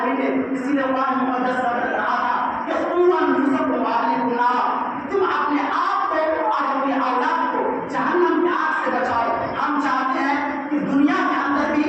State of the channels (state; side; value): identical; both; correlation 1.00